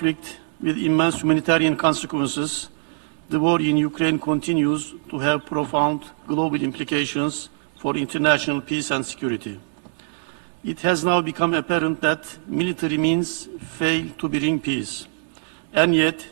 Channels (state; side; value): silent; left; digital silence